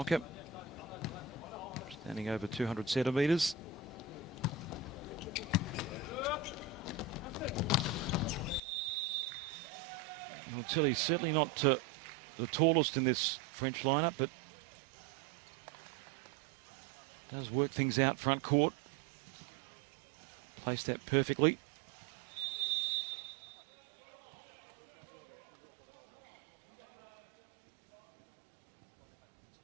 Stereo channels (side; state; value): left; drops out; at 8.6 s